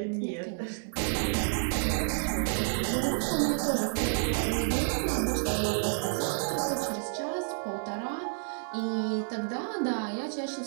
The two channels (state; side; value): silent; left; 58 dB below the other